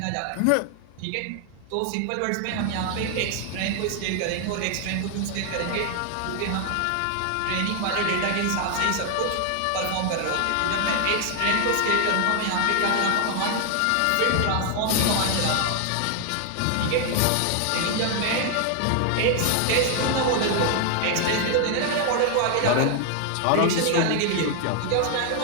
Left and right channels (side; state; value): both; different; correlation 0.00